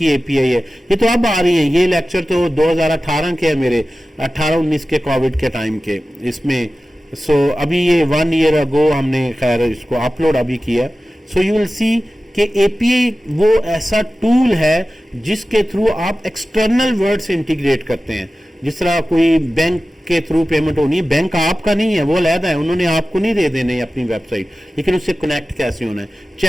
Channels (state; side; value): normal; both; correlation 0.95